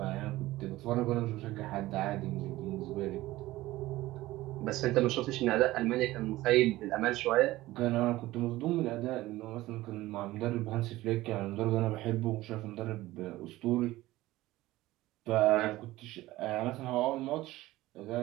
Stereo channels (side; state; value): left; quieter; 17.3 dB